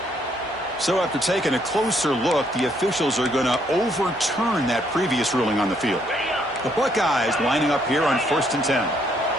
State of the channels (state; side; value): normal; both; correlation 0.70